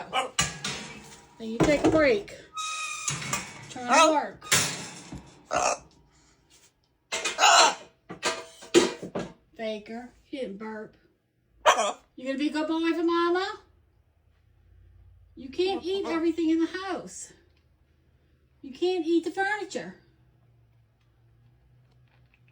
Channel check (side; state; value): both; identical; correlation 1.00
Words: Then you take a break. Try to work. Faker, you didn't burp. You gonna be a good boy for Mama? You can't eat everything in the house. You can't eat the furniture.